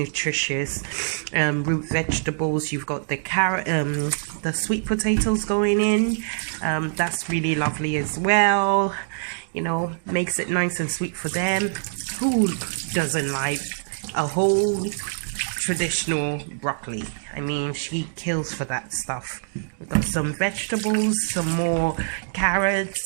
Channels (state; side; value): silent; left; digital silence